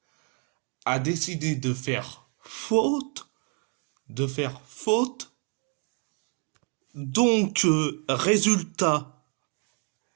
a décidé de faire faute, de faire faute. Donc, résultat,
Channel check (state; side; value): quieter; left; 39.9 dB